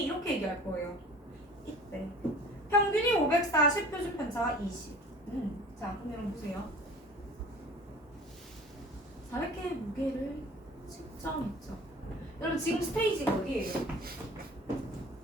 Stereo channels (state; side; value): normal; both; correlation 0.44